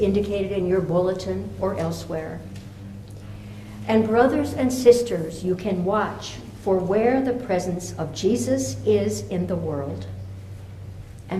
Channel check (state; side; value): identical; both; correlation 1.00